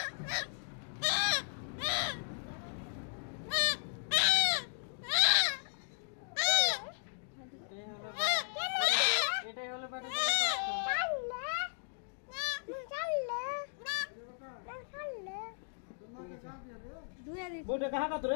এটাই হলো ব্যাটা बोटे कहाँ का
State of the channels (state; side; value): silent; right; digital silence